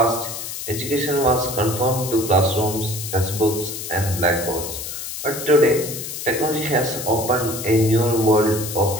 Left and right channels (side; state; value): left; noise; hiss, 7 dB below the sound